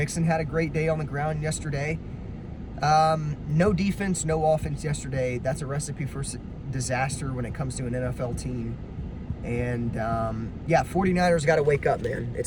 had a great day on the ground yesterday. No defense, no offense yesterday. That's a recipe for disaster when it comes to an NFL team. And, 49ers got to wake up, man.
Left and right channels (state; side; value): identical; both; correlation 1.00